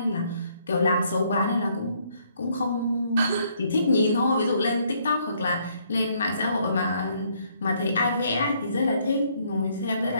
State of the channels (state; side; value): inverted; both; correlation -0.68